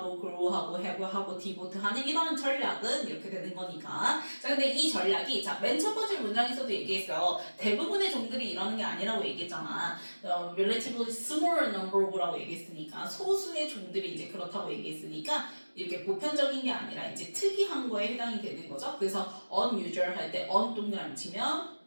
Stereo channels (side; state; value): both; inverted; correlation -1.00